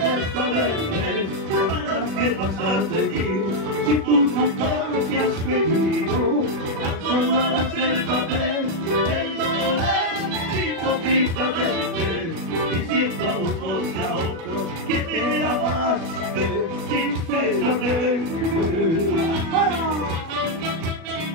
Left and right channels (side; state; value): left; late; 36 ms